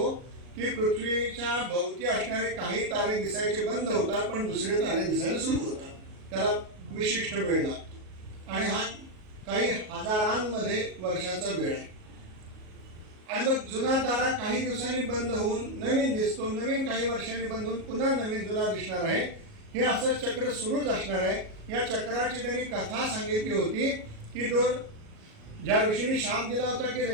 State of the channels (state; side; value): late; left; 38 ms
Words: की पृथ्वीच्या भोवती असणारे काही तारे दिसायचे बंद होतात पण दुसरे तारे दिसायला सुरू होतात. त्याला विशिष्ट वेळ लागतो आणि हा काही हजारांमध्ये वर्षाचा वेळ आहे. आणि मग जुना तारा काही दिवसांनी बंद होऊन नवीन दिसतो, नवीन काही वर्षांनी बंद होऊन पुन्हा नवीन जुना दिसणार आहे. हे असं चक्र सुरूच असणार आहे. या चक्राची त्यांनी कथा सांगितली होती की तो ज्या ऋषीने शाप दिला होता की